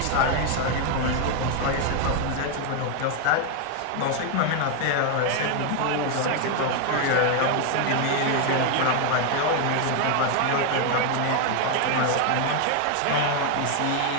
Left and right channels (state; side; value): different; both; correlation 0.00